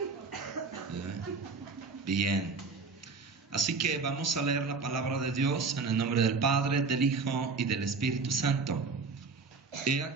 Bien, así que vamos a leer la palabra de Dios en el nombre del Padre, del Hijo y del Espíritu Santo. He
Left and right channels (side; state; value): left; quieter; 4.5 dB